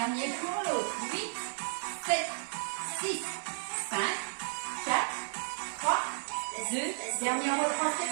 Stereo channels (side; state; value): left; silent; digital silence